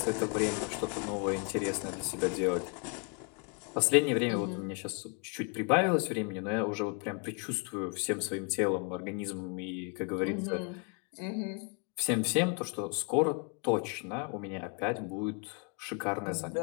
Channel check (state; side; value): quieter; right; 35.5 dB